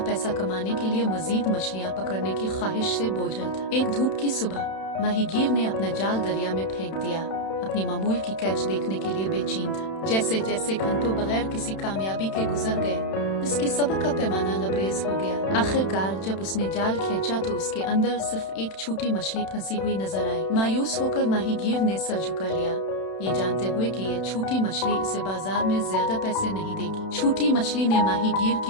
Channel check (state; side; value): late; right; 31 ms